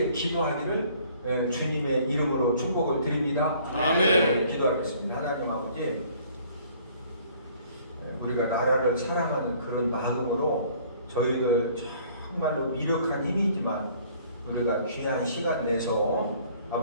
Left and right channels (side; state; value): both; inverted; correlation -0.57